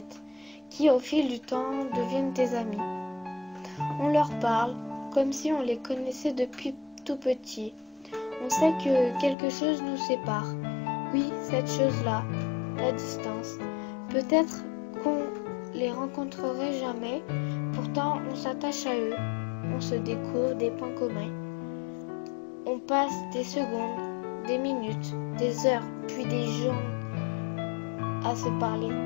qui, au fil du temps, deviennent tes amis. On leur parle comme si on les connaissait depuis tout petit. On sait que quelque chose nous sépare. Oui, cette chose-là, la distance. Peut-être qu'on les rencontrerait jamais, pourtant on s'attache à eux. On se découvre des points communs. On passe des secondes, des minutes, des heures, puis des jours à se parler.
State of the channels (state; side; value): drops out; right; at 9.3 s